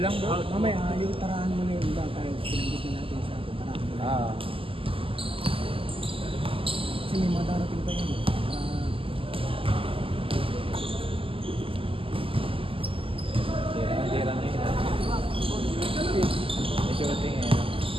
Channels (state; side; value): late; left; 0.26 ms